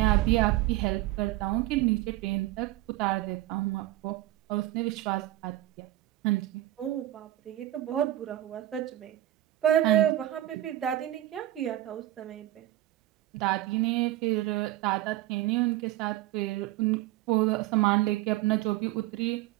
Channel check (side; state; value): left; quieter; 15.0 dB